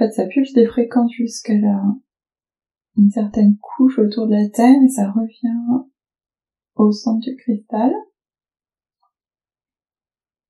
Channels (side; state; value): both; identical; correlation 1.00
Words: ça pulse des fréquences jusqu'à une certaine couche autour de la Terre et ça revient au centre du cristal.